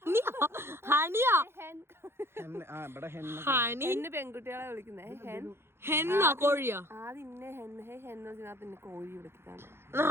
പെൺകുട്ടികളെ വിളിക്കുന്നേ കോഴിയോ? കോഴി വിളിക്കാണ്.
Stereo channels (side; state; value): left; late; 0.12 ms